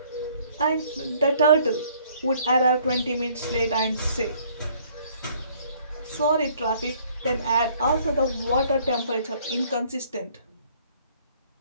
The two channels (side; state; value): both; inverted; correlation -0.61